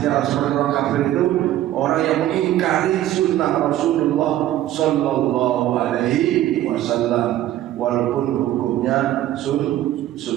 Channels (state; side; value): quieter; left; 13.5 dB